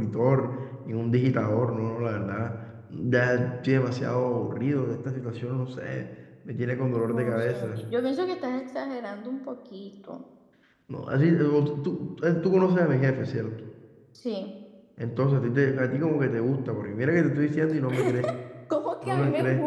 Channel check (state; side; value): identical; both; correlation 1.00